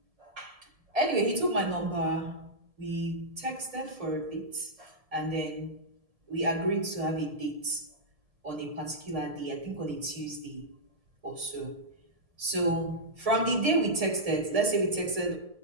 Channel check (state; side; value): late; left; 1.7 ms